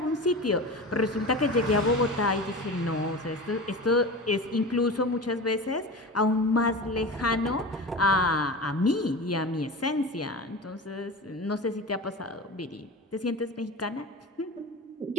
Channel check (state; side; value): normal; both; correlation 0.31